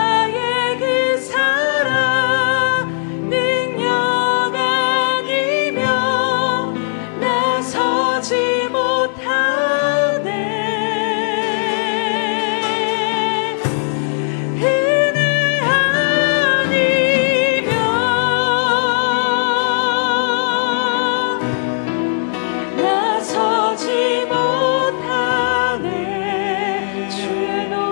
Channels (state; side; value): silent; right; 68 dB below the other